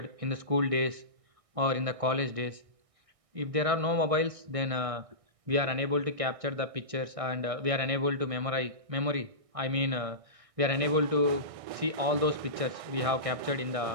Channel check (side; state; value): left; late; 1.6 ms